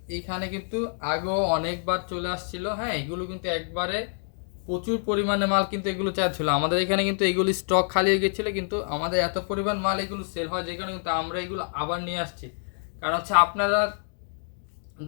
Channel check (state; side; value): silent; right; digital silence